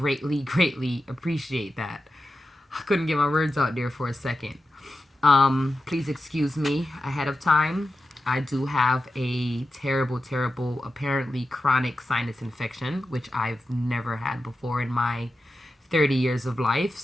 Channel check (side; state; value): both; normal; correlation 0.92